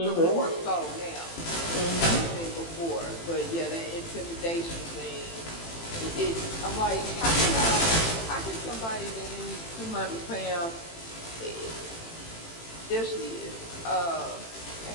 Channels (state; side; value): late; right; 18 ms